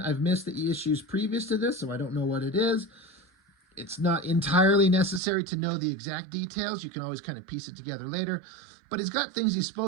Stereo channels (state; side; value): drops out; left; at 5.2 s